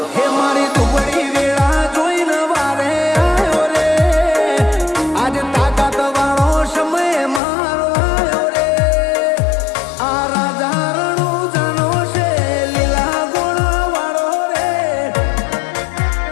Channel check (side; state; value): right; drops out; at 7.4 s